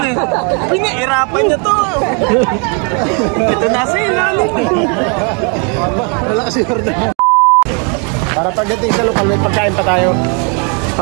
eh. Pinahirapan nyo to. Ito nasa ilalim. Wala kasi order. Para pagdating sa lokal, may pagkain pa tayo.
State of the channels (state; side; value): quieter; left; 36.1 dB